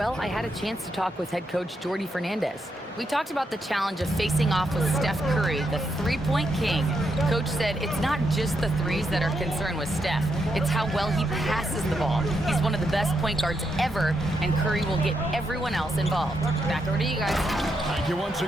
I had a chance to talk with head coach Jordi Fernandez. We talked about the challenge of facing off with Steph Curry, the three-point king. Coach said it's not just the threes that are concerned with Steph. It's how well he passes the ball. He's one of the best point guards ever, and Curry will get everyone else involved. Back over to you guys. Thank you once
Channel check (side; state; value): both; normal; correlation 0.81